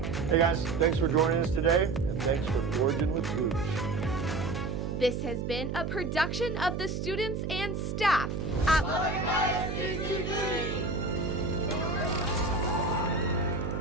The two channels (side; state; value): right; noise; hum, 3 dB below the sound